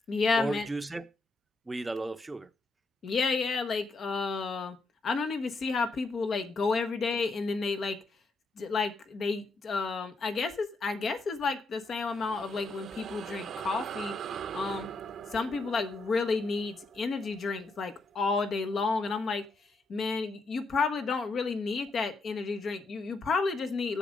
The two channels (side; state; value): right; quieter; 3.4 dB